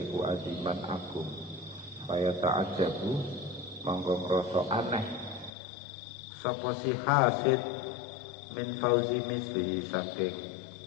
iku aziman agung kaya ta'ajabu monggo ngrasa aneh sapa si hasid min fauzi misli saking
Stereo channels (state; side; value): drops out; right; at 5.5 s